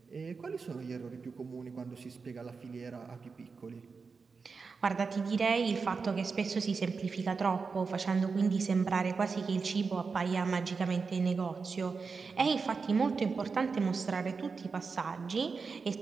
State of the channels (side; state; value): left; quieter; 4.9 dB